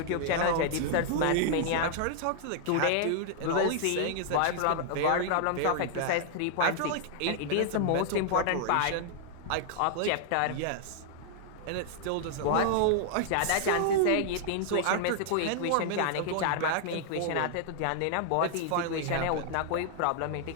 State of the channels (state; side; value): different; both; correlation -0.01